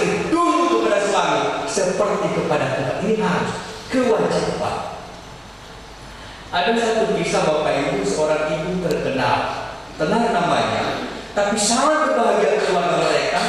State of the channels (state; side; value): identical; both; correlation 1.00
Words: tunduk kepada suami seperti kepada Tuhan. Ini harus kewajiban. Ada satu kisah Bapak Ibu, seorang ibu terkenal, tenar namanya, tapi sangat berbahagia keluarga mereka,